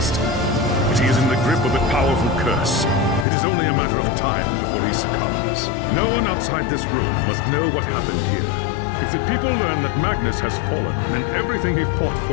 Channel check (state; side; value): drops out; right; at 3.2 s